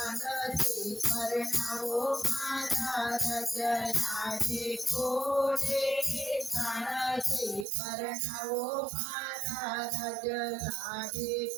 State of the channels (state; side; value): drops out; left; at 7.7 s